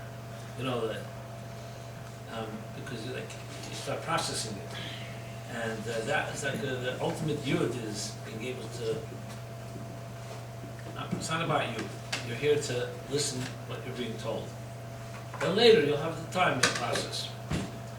Because you start processing it. And that is like the ultimate yud is being able to, it's not about you. You're here to listen what you're being told. Then later you'll have the time to process.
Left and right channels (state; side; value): identical; both; correlation 1.00